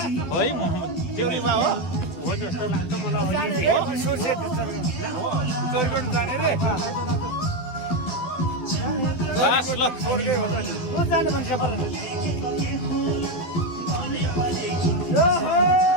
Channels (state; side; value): late; right; 12 ms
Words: होइन है देउली बाबु हो जस्तो लाग्छ मलाई जाने रे सोर्से चोरी गर्नु जाने रे बस ल स्वर्गै हो त नि को जाने भन्छ पर